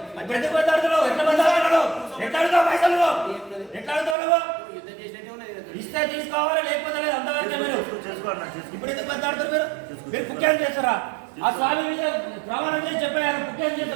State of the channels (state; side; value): drops out; left; at 4.2 s